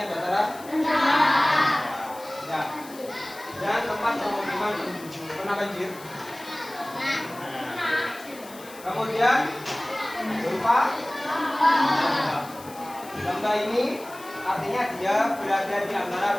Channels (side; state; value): left; noise; hiss, 19 dB below the sound